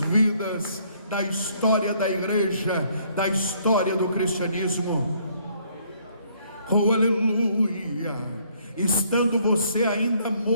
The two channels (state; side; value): inverted; both; correlation -0.65